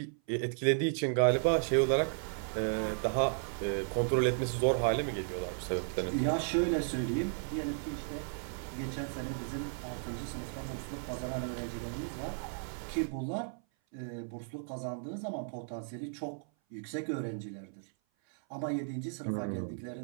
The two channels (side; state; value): left; silent; 55 dB below the other